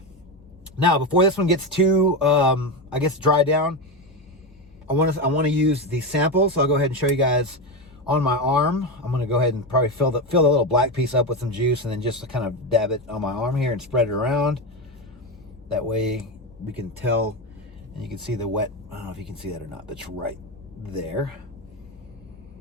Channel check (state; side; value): normal; both; correlation 0.15